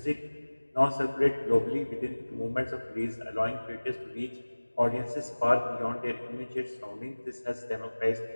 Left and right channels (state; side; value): inverted; both; correlation -1.00